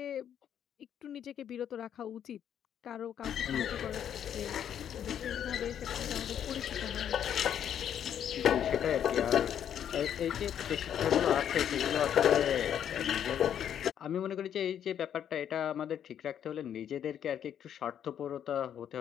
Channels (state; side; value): quieter; right; 9.4 dB